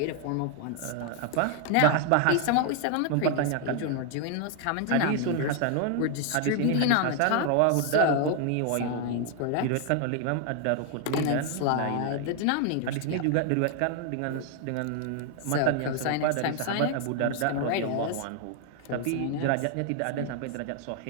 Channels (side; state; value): both; different; correlation 0.00